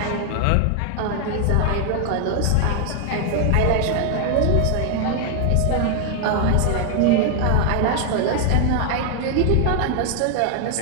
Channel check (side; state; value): both; different; correlation 0.00